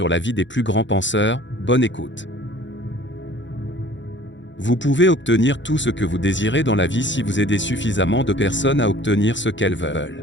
la vie des plus grands penseurs, bonne écoute. Vous pouvez obtenir tout ce que vous désirez dans la vie si vous aidez suffisamment de personnes à obtenir ce qu'elles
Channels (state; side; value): late; right; 0.54 ms